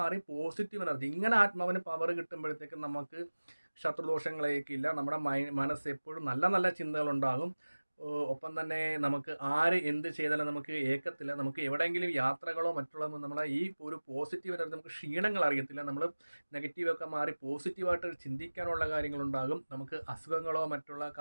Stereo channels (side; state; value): both; inverted; correlation -1.00